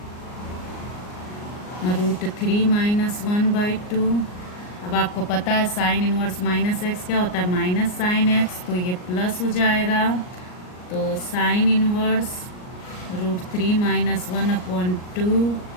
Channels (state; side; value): late; right; 39 ms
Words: √3 माइनस 1/2। अब आपको पता है साइन इनवर्स माइनस एक्स क्या होता है, माइनस साइन एक्स, तो ये प्लस हो जाएगा। तो sine inverse √3 minus 1/2